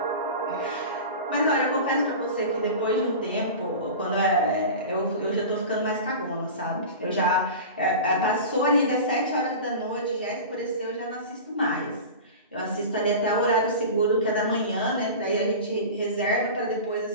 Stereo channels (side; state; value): both; inverted; correlation -0.31